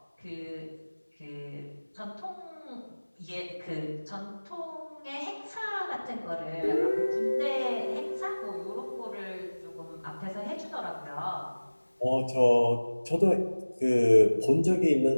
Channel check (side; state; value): both; inverted; correlation -1.00